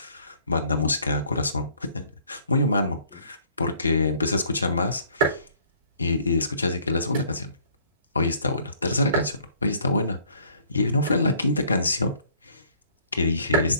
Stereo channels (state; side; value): inverted; both; correlation -0.59